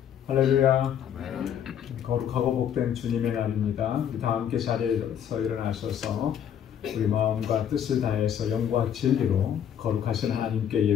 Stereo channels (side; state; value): right; quieter; 9.2 dB